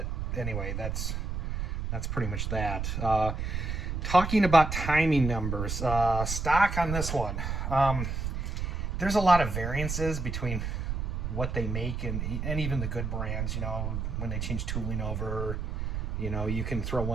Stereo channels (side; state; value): right; noise; rumble, 3 dB below the sound